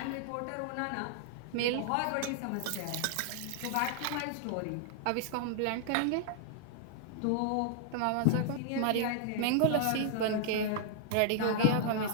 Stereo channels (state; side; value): different; both; correlation -0.01